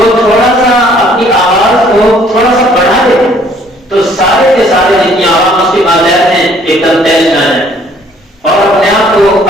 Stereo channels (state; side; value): normal; both; correlation 0.60